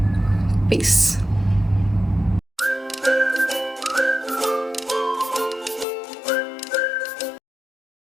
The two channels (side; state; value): right; drops out; at 5.9 s